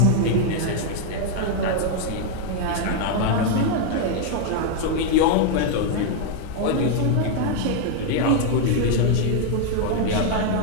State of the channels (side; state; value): both; different; correlation 0.00